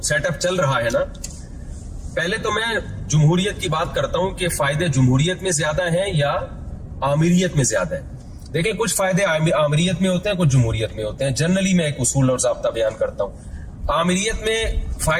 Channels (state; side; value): identical; both; correlation 1.00